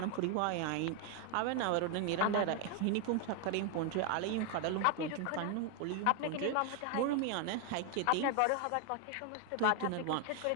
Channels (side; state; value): both; different; correlation 0.00